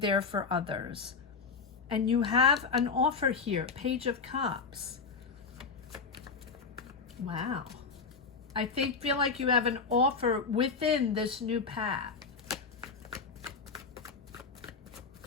for others. And you have an offer here, Page of Cups. Wow. I feel like you have an offer within this new path.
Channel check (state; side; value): quieter; right; 5.0 dB